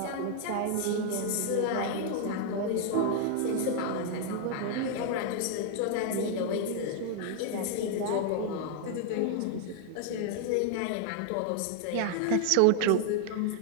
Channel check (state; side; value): different; both; correlation 0.00